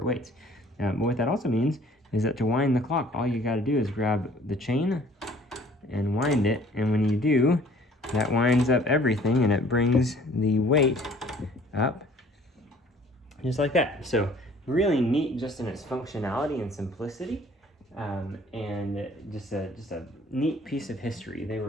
weights. But what that also means is that to wind the clock, all you got to do is grab the chain and wind it, and when you do, that winds up everything, and it brings the weight up just like that. So really neat just in its functionality and simplicity, and just a neat piece of history. They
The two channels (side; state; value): both; normal; correlation 0.54